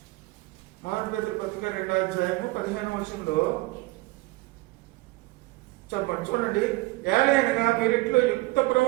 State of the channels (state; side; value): quieter; left; 21.7 dB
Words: 1 పేతురు పత్రిక 2వ అధ్యాయము 15వ వచనంలో చెప్పండి, చూడండి. ఏలైనగా మీరింట్లో యుక్త